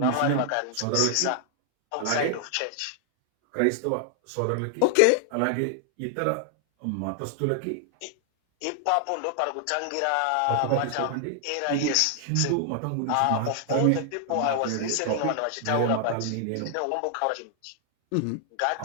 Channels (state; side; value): different; both; correlation 0.00